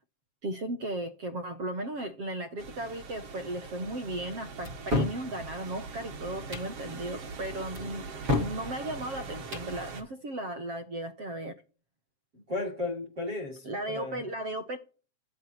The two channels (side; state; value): left; late; 7.3 ms